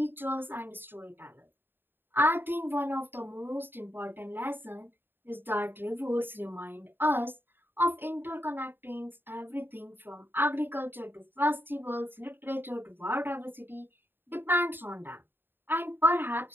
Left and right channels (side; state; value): left; late; 0.098 ms